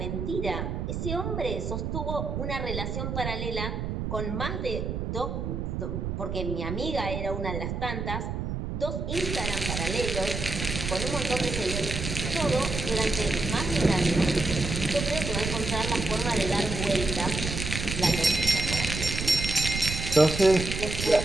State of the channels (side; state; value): right; noise; rumble, 3 dB below the sound